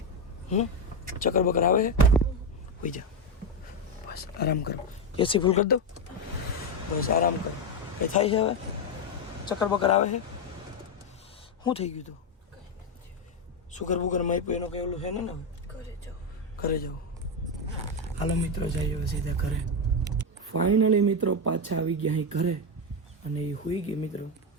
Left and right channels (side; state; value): both; normal; correlation 0.07